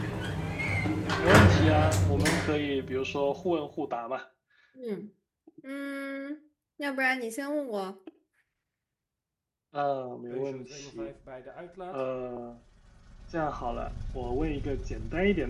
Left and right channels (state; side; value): identical; both; correlation 1.00